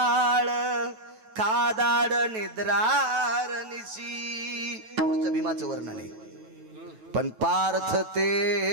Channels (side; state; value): left; late; 9.2 ms